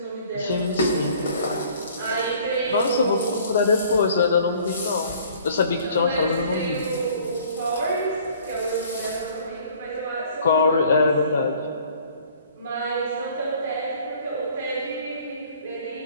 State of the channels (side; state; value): both; inverted; correlation -0.54